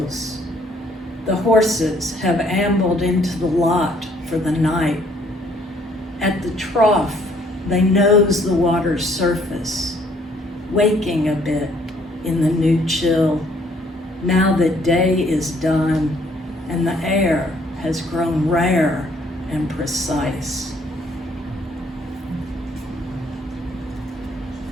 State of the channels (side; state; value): both; normal; correlation 0.64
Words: The horses have ambled into the lot for the night. At the trough, they nose the water's surface, waking a bit in the new chill, now that day is done and the air has grown rare and precise.